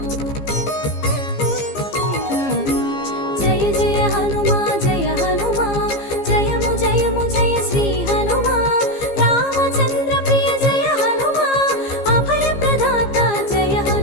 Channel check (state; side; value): late; right; 15 ms